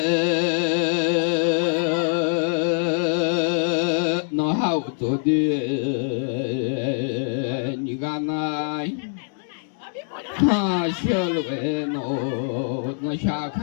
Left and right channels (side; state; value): right; silent; 62 dB below the other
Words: nó hao tôi đi như ga này ha xe lối nó xa